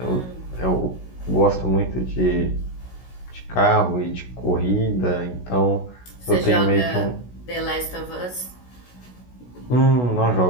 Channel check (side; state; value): right; late; 16 ms